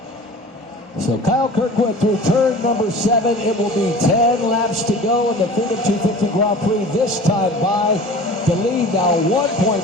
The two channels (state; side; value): normal; both; correlation 0.41